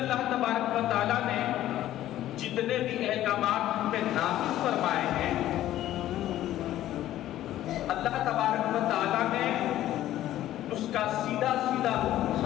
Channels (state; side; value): quieter; right; 13.4 dB